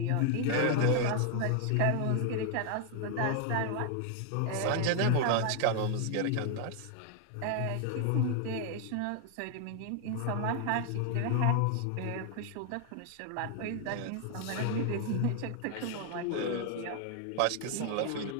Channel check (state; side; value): different; both; correlation 0.00